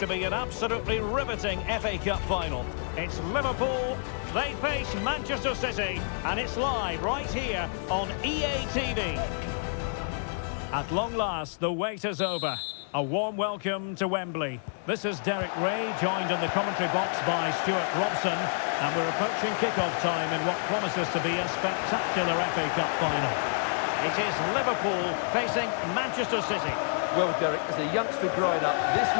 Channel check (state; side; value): silent; right; digital silence